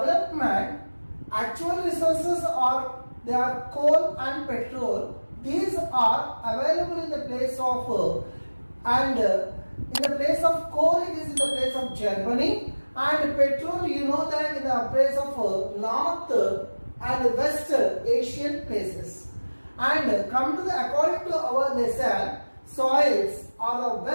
actual resources are they are coal and petrol. These are available in the place of in the place of coal it is in the place of Germany, and petrol you know that in the place of North and West Asian places. And come to the according to our lesson, soils are the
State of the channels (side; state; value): both; inverted; correlation -1.00